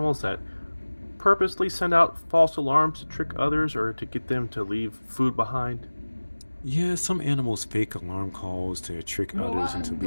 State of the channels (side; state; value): both; inverted; correlation -1.00